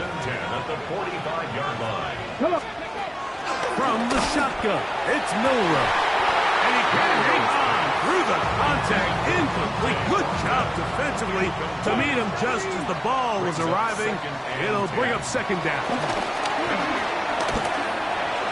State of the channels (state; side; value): identical; both; correlation 1.00